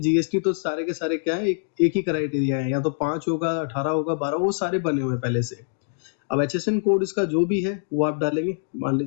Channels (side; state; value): right; silent; digital silence